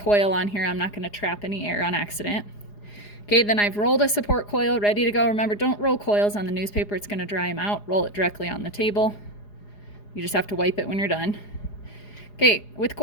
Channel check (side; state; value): right; late; 4.9 ms